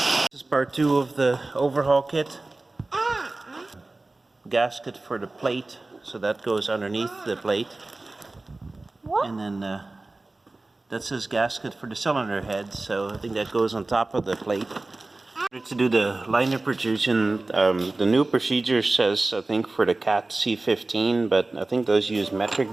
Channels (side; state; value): left; quieter; 3.1 dB